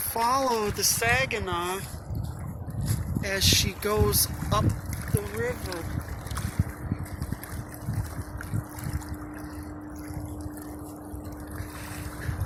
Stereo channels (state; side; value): identical; both; correlation 1.00